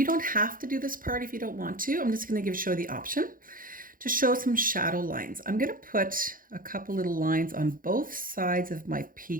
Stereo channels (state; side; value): late; left; 0.40 ms